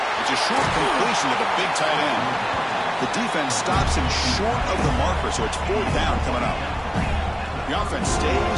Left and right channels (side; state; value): both; identical; correlation 1.00